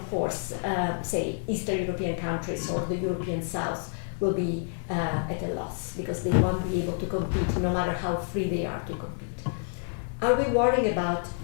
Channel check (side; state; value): right; silent; 59 dB below the other